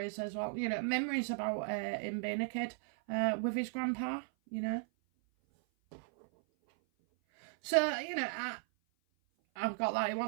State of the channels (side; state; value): left; silent; 54 dB below the other